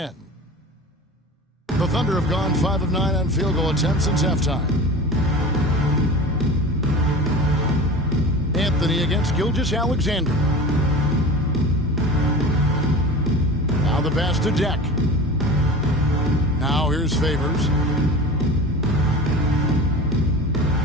The Thunder have gone 5 of 9 on field goal attempts since halftime. Anthony against Gilgeous-Alexander. Now the pass to Deck. Now here's Favors.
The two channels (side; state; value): both; normal; correlation 0.34